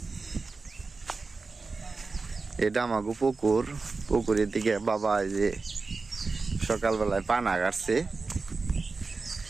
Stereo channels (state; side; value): quieter; left; 4.1 dB